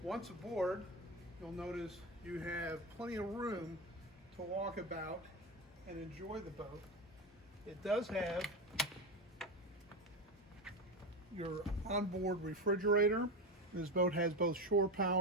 Once aboard, you'll notice you have plenty of room to walk about and enjoy the boat. It does have your onboard refrigerator. This boat has both shore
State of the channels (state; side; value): normal; both; correlation 0.19